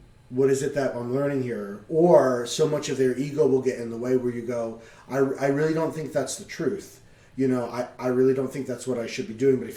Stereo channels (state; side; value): identical; both; correlation 1.00